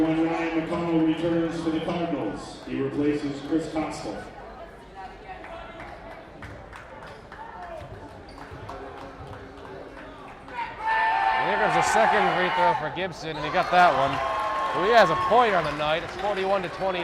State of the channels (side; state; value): both; identical; correlation 1.00